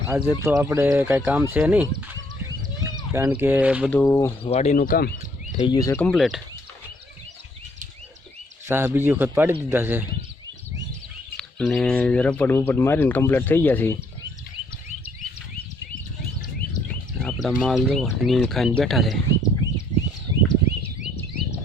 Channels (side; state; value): both; normal; correlation 0.66